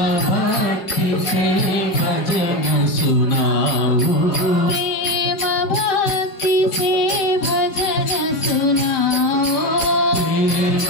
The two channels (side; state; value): right; late; 5.4 ms